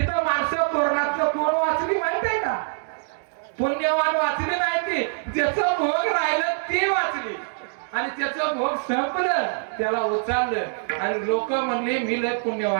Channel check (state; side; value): silent; left; digital silence